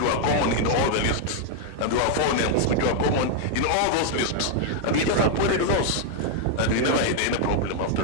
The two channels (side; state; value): both; different; correlation 0.00